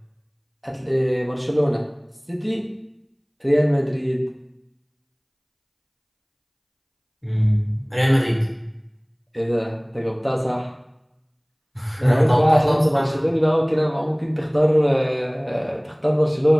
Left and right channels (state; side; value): identical; both; correlation 1.00